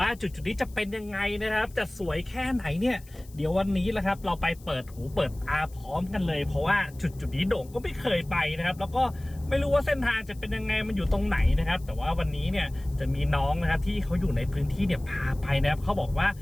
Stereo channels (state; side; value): noise; left; hiss, 25 dB below the sound